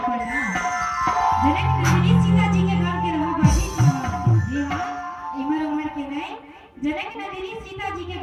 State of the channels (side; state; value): both; identical; correlation 1.00